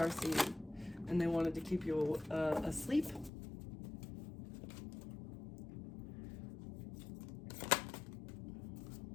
seed, and they wanted to keep you asleep.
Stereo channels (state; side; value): drops out; right; at 3.3 s